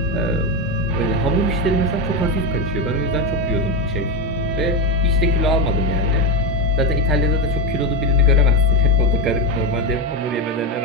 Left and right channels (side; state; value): both; normal; correlation 0.13